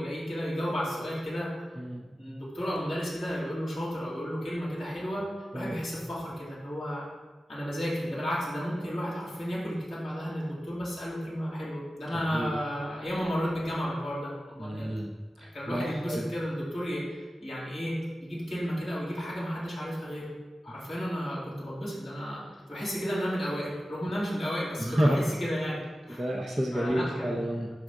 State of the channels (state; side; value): normal; both; correlation 0.94